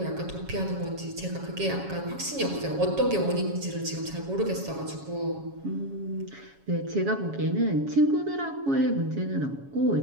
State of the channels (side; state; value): left; late; 7.2 ms